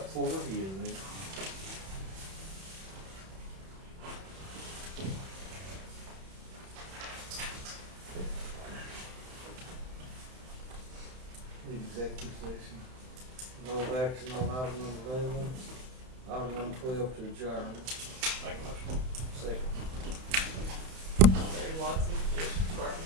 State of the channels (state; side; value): late; left; 31 ms